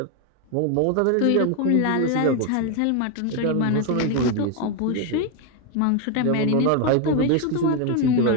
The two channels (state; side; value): different; both; correlation 0.01